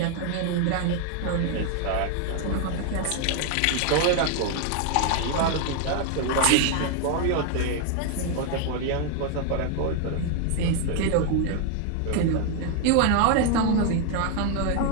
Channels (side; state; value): both; different; correlation 0.00